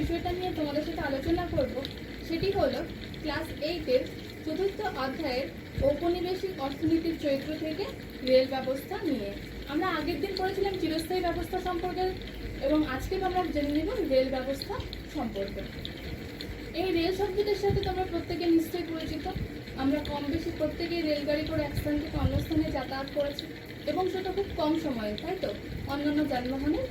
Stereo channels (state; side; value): identical; both; correlation 1.00